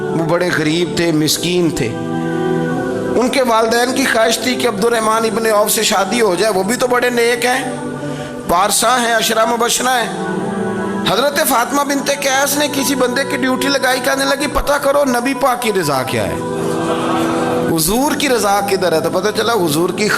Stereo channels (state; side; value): identical; both; correlation 1.00